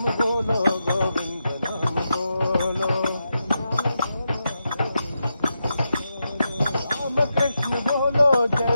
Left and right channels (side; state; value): both; inverted; correlation -0.87